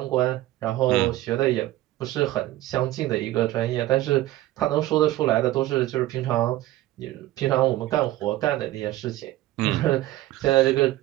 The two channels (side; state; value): left; quieter; 16.0 dB